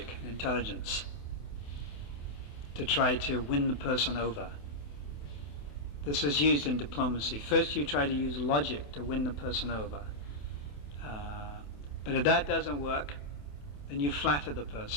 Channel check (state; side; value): late; right; 28 ms